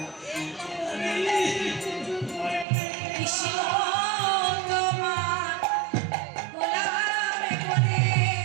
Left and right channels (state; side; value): drops out; left; at 2.7 s